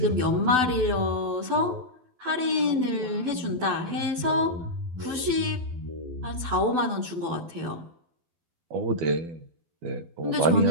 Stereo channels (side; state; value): left; late; 12 ms